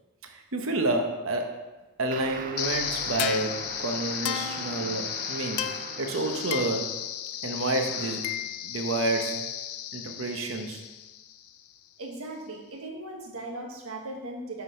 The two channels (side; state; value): both; normal; correlation -0.10